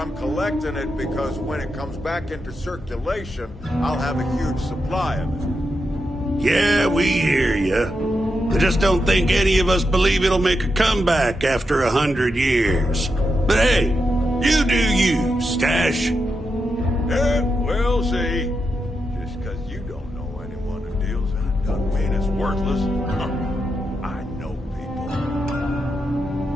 collecting it because when it comes back into circulation, I'll have a huge supply of it. Yeah, we hear you. I just don't think any of us believe it'll make a comeback after 100 years. But hey, you do you, Stash. Yeah, we'll see. Just because you don't know anyone who deals in it doesn't mean it's worthless. I know people.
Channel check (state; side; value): normal; both; correlation 0.86